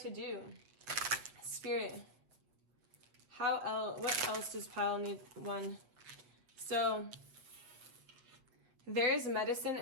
do. Spirit, what else does pile need? One. So there is medicine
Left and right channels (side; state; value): left; late; 7.9 ms